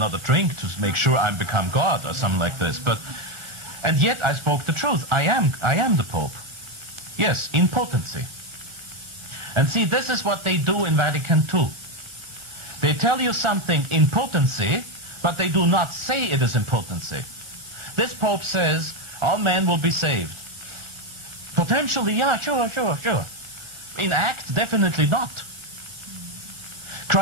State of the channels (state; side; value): late; left; 1.4 ms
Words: drink to make sure I become God or something like this. And yet I spoke the truth. I am the Pope. Yes, in potency. And see, this is what they do in Vatican II. They tell you something in potency, but they do not say it is in potency. This Pope says all men will be saved. Potentially, yeah, sure. In act, definitely not.